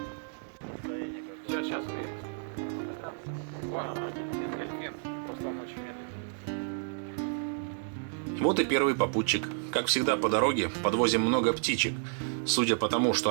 Сейчас увидите. Вон, дельфин, просто он очень медленный. Вот и первый попутчик. Как всегда по дороге подвозим много птичек. Судя по тому, что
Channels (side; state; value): left; silent; digital silence